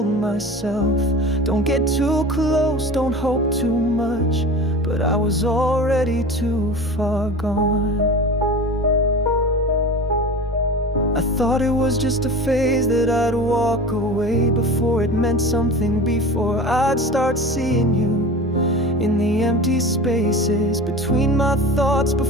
myself, don't get too close, don't hope too much. But I was already too far gone. I thought it was just a phase that I'd walk away before it meant something, before I'd start seeing you in the empty spaces between my thoughts,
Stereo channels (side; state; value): both; normal; correlation 0.34